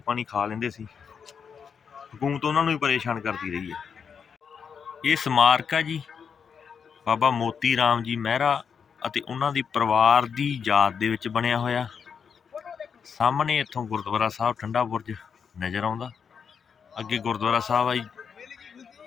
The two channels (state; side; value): quieter; right; 6.6 dB